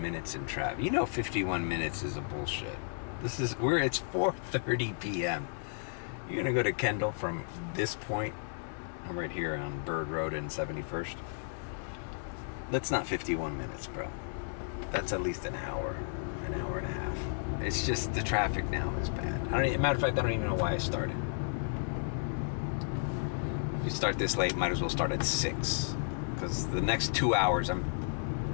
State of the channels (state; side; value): silent; right; digital silence